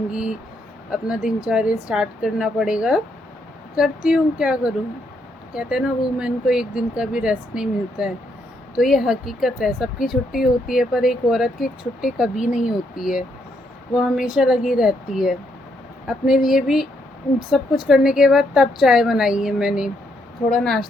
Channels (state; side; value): normal; both; correlation 0.75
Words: अपना दिनचर्या स्टार्ट करना पड़ेगा। करती हूँ, क्या करूँ। कहते हैं ना, वूमेन को एक दिन का भी रेस्ट नहीं मिलता है। तो ये हकीकत है। सबकी छुट्टी होती है पर एक औरत की छुट्टी कभी नहीं होती है। वो हमेशा लगी रहती है। अपने लिए भी सब कुछ करने के बाद तब चाय बनाई है मैंने। थोड़ा